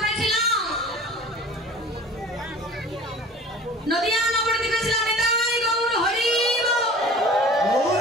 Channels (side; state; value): both; normal; correlation 0.43